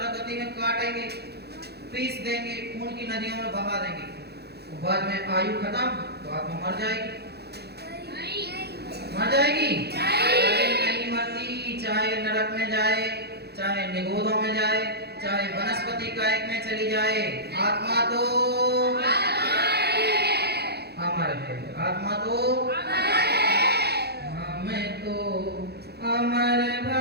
गति में काटेंगे, पीस देंगे, खून की नदियों में बहा देंगे, बाद में आयु खत्म तो आत्मा मर जाएगी। मर जाएगी, नहीं मरती। चाहे नरक में जाए, चाहे निगोदों में जाए, चाहे वनस्पति कायक में चली जाए, आत्मा तो अमर है। आत्मा तो हमें तो अमर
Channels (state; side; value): late; left; 0.47 ms